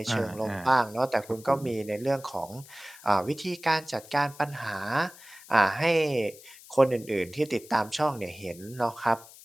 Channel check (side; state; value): left; noise; hiss, 20 dB below the sound